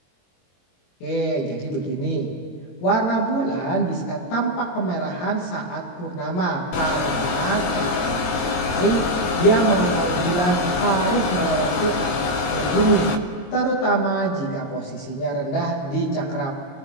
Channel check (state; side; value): late; right; 22 ms